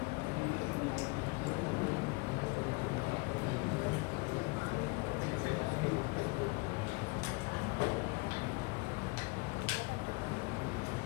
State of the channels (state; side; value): quieter; right; 27.0 dB